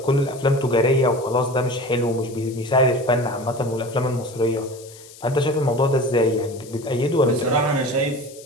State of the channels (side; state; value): left; noise; hiss, 20 dB below the sound